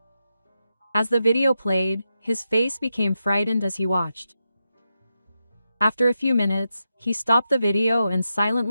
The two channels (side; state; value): both; inverted; correlation -0.87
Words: As the video played, his face became frightened as he watched. After a few minutes, he stopped the video and